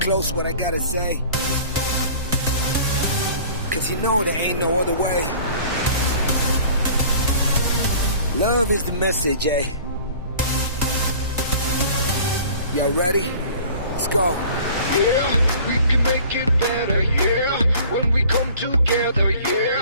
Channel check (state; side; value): inverted; both; correlation -0.47